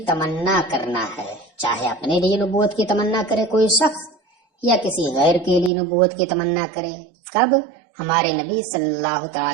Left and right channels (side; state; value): left; drops out; at 5.7 s